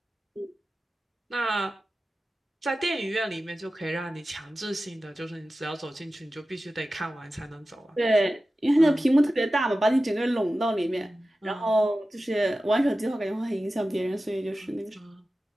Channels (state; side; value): normal; both; correlation 0.94